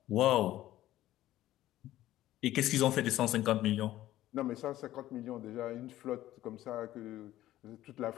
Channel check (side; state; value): right; quieter; 14.4 dB